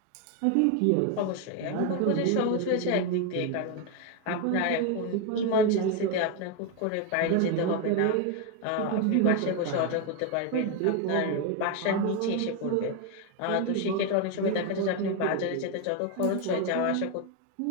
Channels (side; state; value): both; different; correlation 0.02